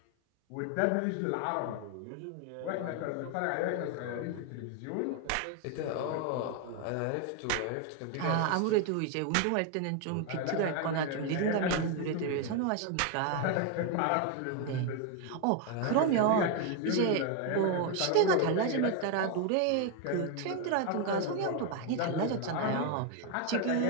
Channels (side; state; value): both; different; correlation 0.01